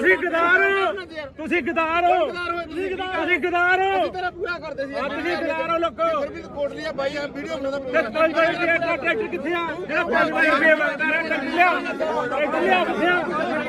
ਗਦਾਰ ਹੋ, ਤੁਸੀਂ ਗਦਾਰ ਹੋ, ਤੁਸੀਂ ਗਦਾਰ ਹੋ, ਤੇਰਾ ਪੂਰਾ ਕਰਦੇ ਸੀ ਤੁਸੀਂ ਗਦਾਰ ਹੋ ਲੋਕੋ। ਫਿਰ ਵੀ ਕੋਟਲੀ ਆ ਬਾਈ ਆ ਵੀਡੀਓ ਬਣਾਉਂਦਾ ਤੇ 5 ਵਜੇ ਦਾ ਟਰੈਕਟਰ ਕਿੱਥੇ ਆ? ਜਿਹੜਾ 5 ਵਜੇ ਮੰਗਦਾ ਰਿਹਾ ਟਰੈਕਟਰ ਲਿਆ, ਟਰੈਕਟਰ ਲਿਆ ਕਿੱਥੇ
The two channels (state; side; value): identical; both; correlation 1.00